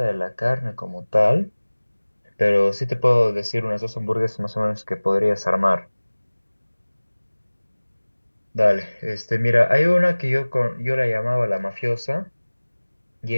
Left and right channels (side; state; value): both; inverted; correlation -1.00